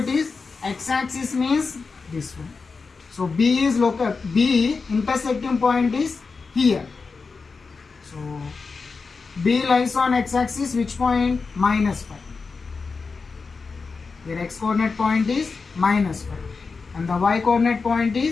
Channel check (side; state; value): right; quieter; 4.6 dB